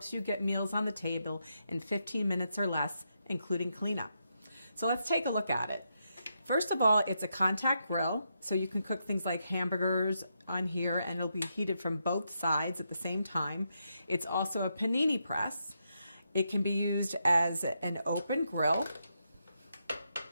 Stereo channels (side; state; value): both; inverted; correlation -0.82